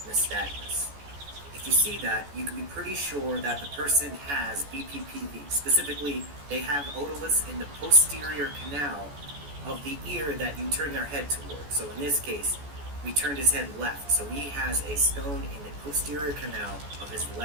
nystagmus. If you see that, you can be pretty sure that the person has BPPV. Specifically, they have otoliths in the posterior canal of the ear that you turn their head toward. So in this case, we turned his head left, so he has a stone in the posterior canal of his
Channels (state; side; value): late; left; 14 ms